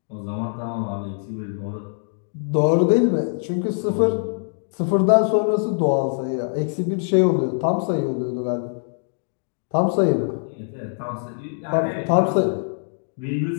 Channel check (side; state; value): right; silent; digital silence